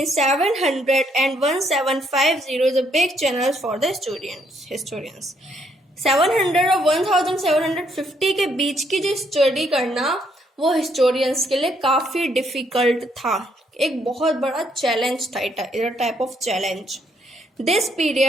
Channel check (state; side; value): normal; both; correlation 0.71